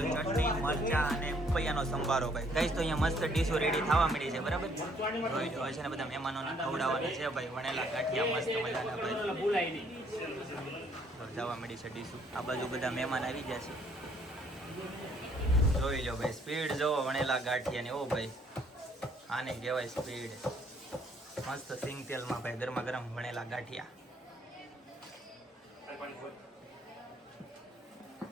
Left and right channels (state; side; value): normal; both; correlation 0.65